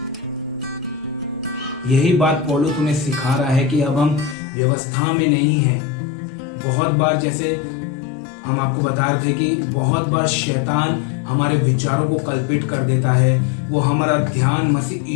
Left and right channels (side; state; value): right; drops out; at 4.4 s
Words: यही बात पौलुस हमें सिखा रहा है कि अब हम व्यवस्था में नहीं हैं। बहुत बार, जैसे हम आपको बता रहे थे कि बहुत बार शैतान हमारे विचारों को कल्पित कर देता है। वो हमारा ध्यान मसीह